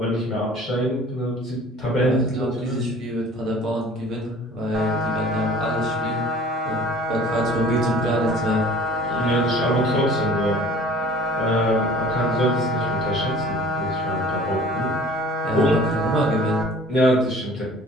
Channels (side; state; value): both; normal; correlation 0.47